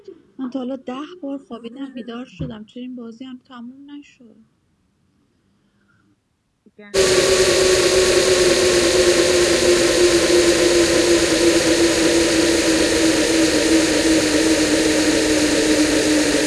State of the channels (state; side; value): identical; both; correlation 1.00